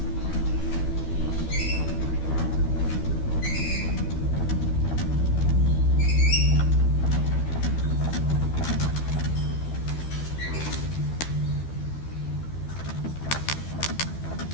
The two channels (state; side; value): late; right; 12 ms